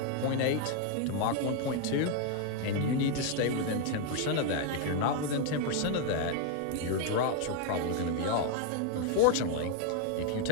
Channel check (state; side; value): different; both; correlation 0.01